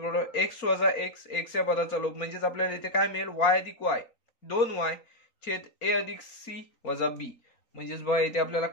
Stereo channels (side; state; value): right; late; 4.3 ms